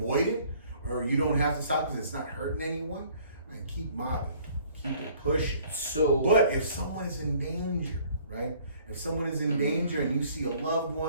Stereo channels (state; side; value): inverted; both; correlation -0.57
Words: it, or you don't have to stop because it's not hurting anyone, man, keep mobbing, keep it pushing. But if someone is in danger, right? If someone is in danger and you see a loved